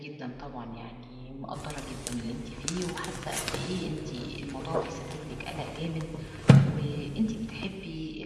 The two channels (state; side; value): identical; both; correlation 1.00